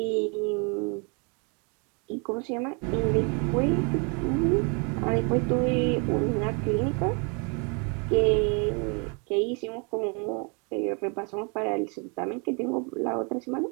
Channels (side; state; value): left; quieter; 34.5 dB